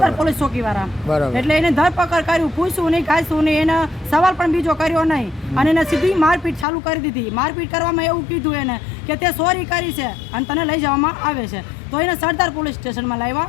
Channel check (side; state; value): right; drops out; at 6.7 s